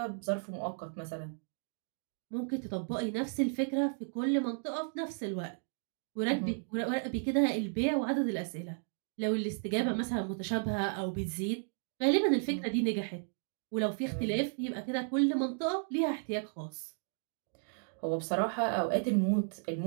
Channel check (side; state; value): left; silent; 55 dB below the other